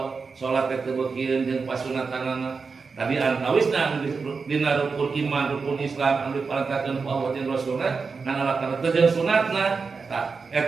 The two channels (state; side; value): quieter; left; 4.9 dB